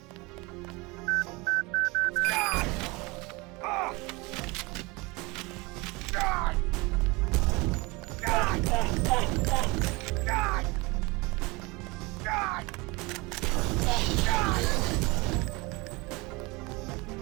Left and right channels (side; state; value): left; quieter; 25.1 dB